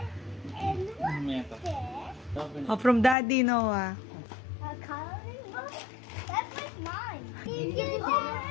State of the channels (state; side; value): drops out; right; at 3.2 s